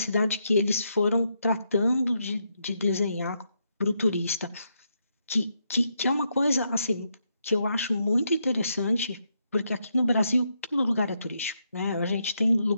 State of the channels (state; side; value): inverted; both; correlation -0.80